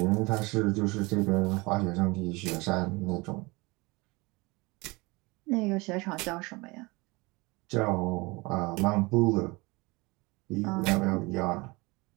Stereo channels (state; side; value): quieter; left; 24.8 dB